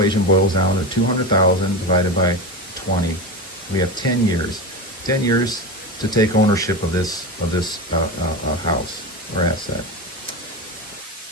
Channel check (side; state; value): both; normal; correlation 0.20